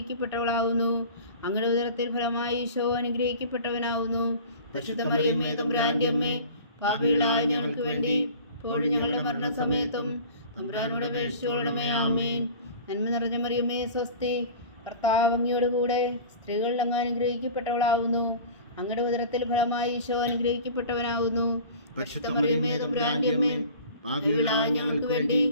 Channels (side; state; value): both; inverted; correlation -0.41